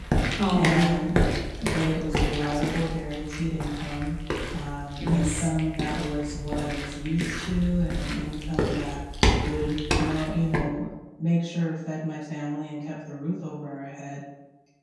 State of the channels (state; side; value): identical; both; correlation 1.00